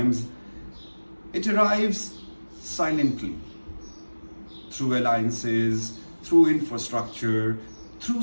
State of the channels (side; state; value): both; inverted; correlation -1.00